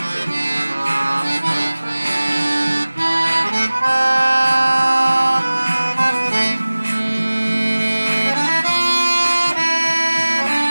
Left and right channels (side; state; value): both; inverted; correlation -1.00